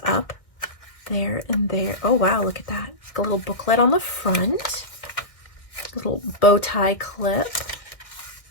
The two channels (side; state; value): right; late; 1.8 ms